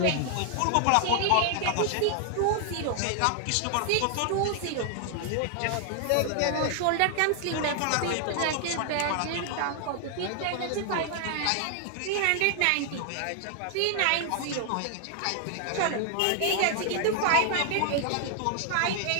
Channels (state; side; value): different; both; correlation 0.00